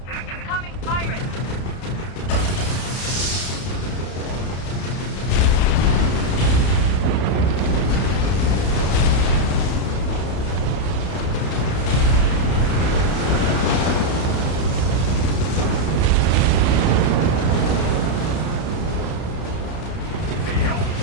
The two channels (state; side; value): late; right; 31 ms